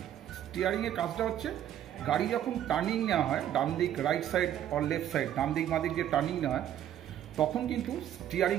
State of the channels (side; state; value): left; quieter; 11.1 dB